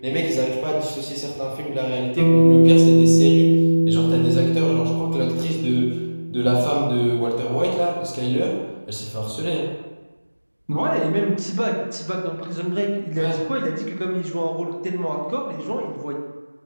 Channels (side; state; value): both; inverted; correlation -1.00